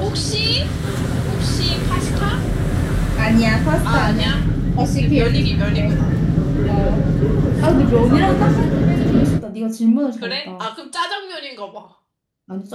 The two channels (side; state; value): both; identical; correlation 1.00